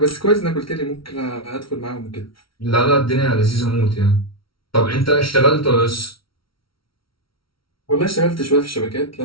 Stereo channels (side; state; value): right; late; 0.75 ms